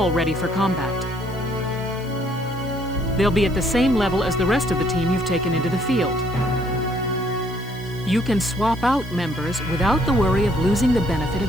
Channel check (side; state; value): left; noise; hiss, 24 dB below the sound